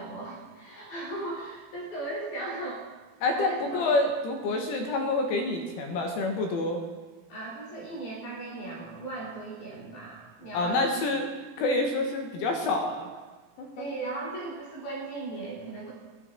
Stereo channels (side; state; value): right; late; 18 ms